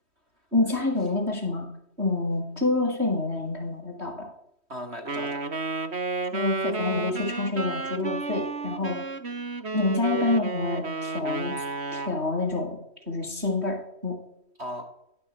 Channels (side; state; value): left; late; 3.1 ms